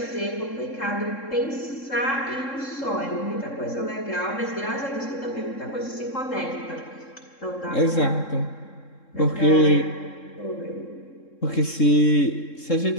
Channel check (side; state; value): right; late; 3.7 ms